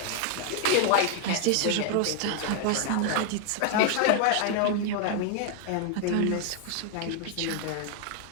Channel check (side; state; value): both; different; correlation 0.00